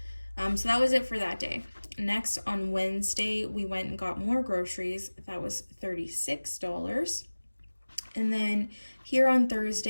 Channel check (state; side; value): inverted; both; correlation -1.00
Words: So that was it for that day. Next, on Wednesday, we went and got more groceries. That was $36. And then here on